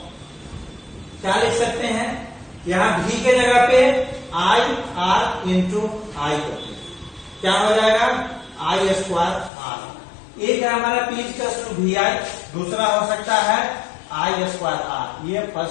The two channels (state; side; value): drops out; right; at 9.5 s